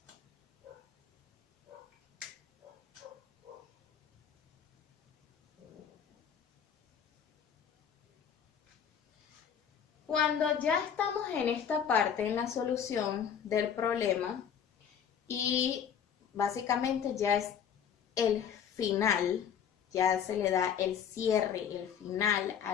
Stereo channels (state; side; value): quieter; right; 8.1 dB